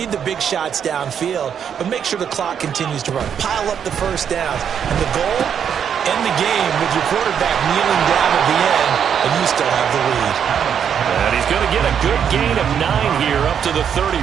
the big shots downfield, but make sure the clock continues to run. Pile up the first downs. And the goal, end the game with your quarterback kneeling down at the end, and you still have the lead. And he's going to get a good gain of 9 here up to the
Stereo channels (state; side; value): quieter; left; 8.1 dB